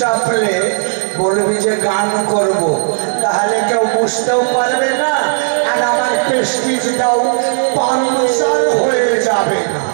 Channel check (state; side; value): silent; left; digital silence